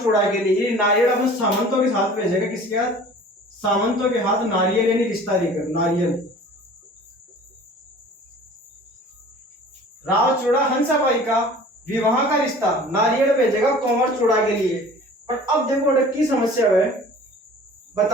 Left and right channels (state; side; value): normal; both; correlation 0.45